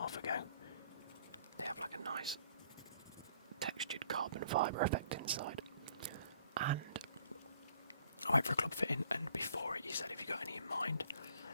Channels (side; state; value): both; inverted; correlation -0.60